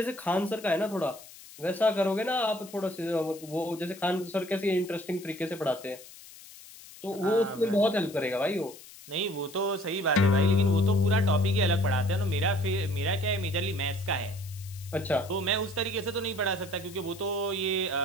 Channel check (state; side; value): noise; left; hiss, 18 dB below the sound